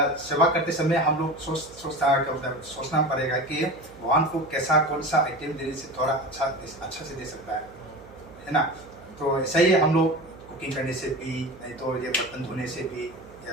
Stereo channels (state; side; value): noise; right; hum, 21 dB below the sound